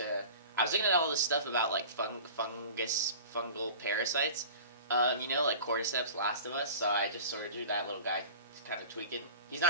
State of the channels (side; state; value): both; inverted; correlation -0.40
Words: looking at all this stuff about like fungal parasites, like cordyceps, Last of Us. So I just sort of drew that little guy, kind of tweaking. He's